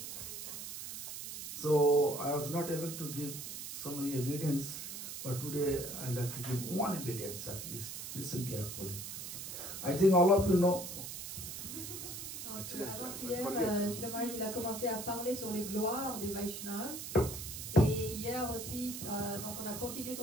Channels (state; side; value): noise; right; hiss, 8 dB below the sound